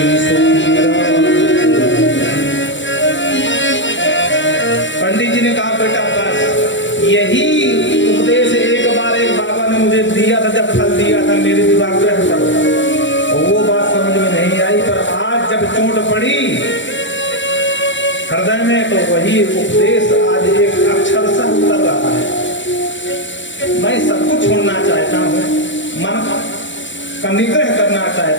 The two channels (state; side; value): late; right; 0.54 ms